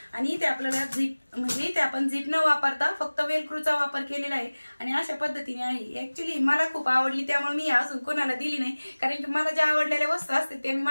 आणि इथे आपल्याला झिप म्हणजे इथे आपण झिप न वापरता फक्त वेलक्रूचा वापर केलेला आहे आणि अशा पद्धतीने आहे। ऍक्च्युली मला खूप आवडली, त्यामुळे मी अजून कोणाला दिली नाही, कारण की मला ज्या आवडलेल्या वस्तू असते ते मी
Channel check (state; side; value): inverted; both; correlation -1.00